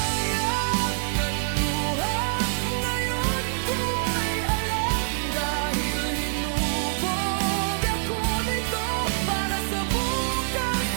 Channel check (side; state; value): left; silent; digital silence